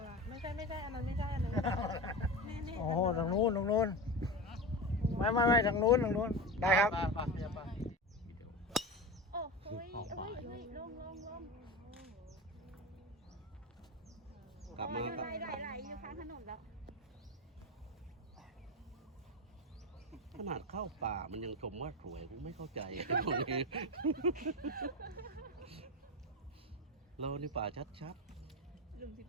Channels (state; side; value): normal; both; correlation 0.23